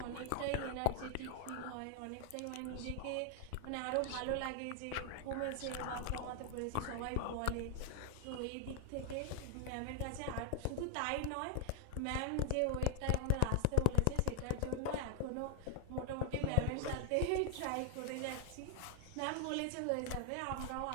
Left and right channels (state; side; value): different; both; correlation 0.00